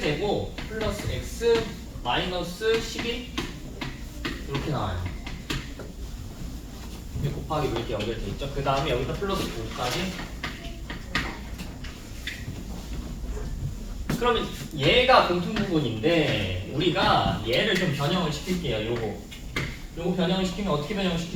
플러스 x 마이너스 11 이렇게 나와요. 곱하기 이렇게 연결돼 있죠. 그 다음에 여기다 플러스 5까지. 그러면 얘가 공통 부분인데 우리가 얘를 좀 변형을 시킬게요. 요거 변형을 시키면 어떻게 변형을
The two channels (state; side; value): identical; both; correlation 1.00